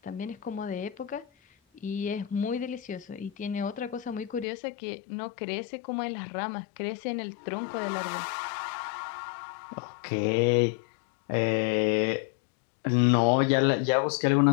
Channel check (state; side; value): drops out; right; at 4.5 s